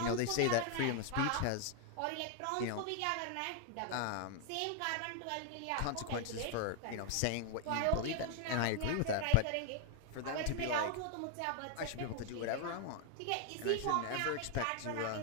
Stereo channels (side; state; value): both; different; correlation 0.00